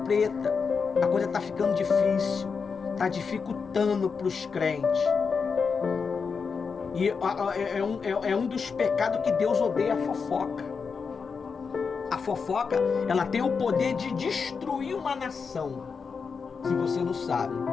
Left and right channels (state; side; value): quieter; right; 5.5 dB